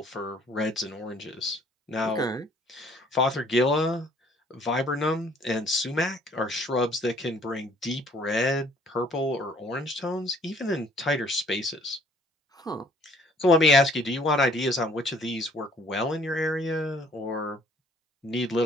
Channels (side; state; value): both; normal; correlation 0.59